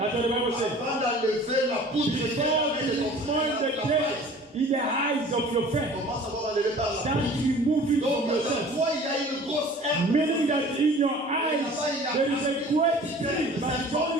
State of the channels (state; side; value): normal; both; correlation 0.46